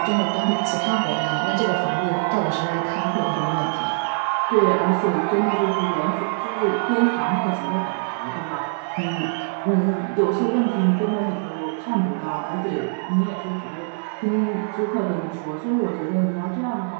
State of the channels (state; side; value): silent; left; digital silence